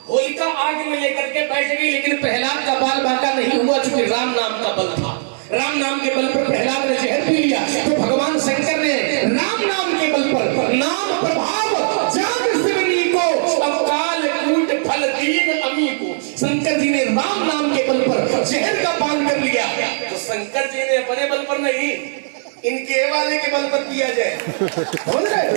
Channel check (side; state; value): left; silent; digital silence